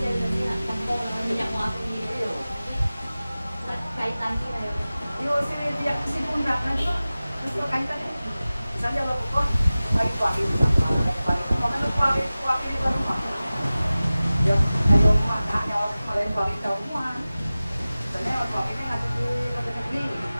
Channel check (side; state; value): both; inverted; correlation -0.97